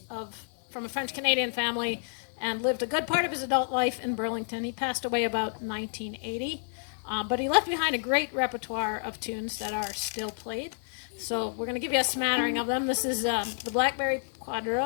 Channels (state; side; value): silent; right; 58 dB below the other